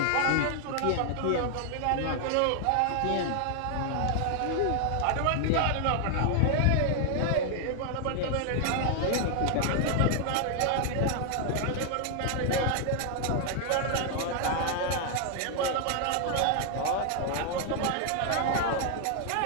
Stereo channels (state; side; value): different; both; correlation 0.00